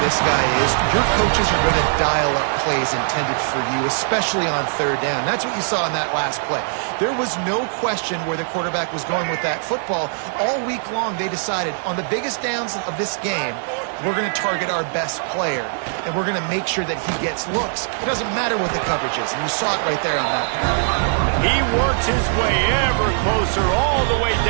this guy is, your coaches are going to dial up plays intended for you, especially on 3rd down. That's what you saw in that last play. There was no question where the quarterback was going with that football. All week long, they decided on the biggest downs of this game, we're going to target our best player, and we're going to make sure that he gets looks. It doesn't matter what the coverage is, and you saw it right there on that. He works his way ever closer all the way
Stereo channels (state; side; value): silent; left; digital silence